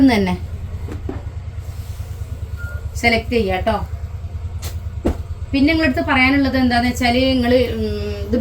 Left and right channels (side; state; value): both; identical; correlation 1.00